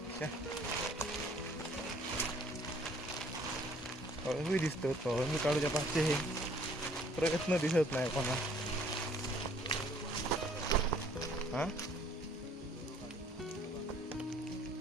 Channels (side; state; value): both; normal; correlation 0.59